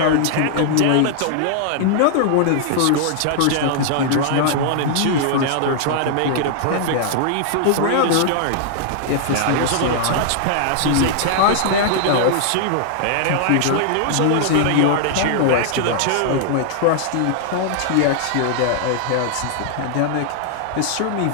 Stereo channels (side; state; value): both; different; correlation -0.01